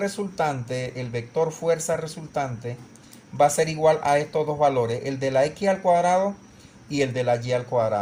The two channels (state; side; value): identical; both; correlation 1.00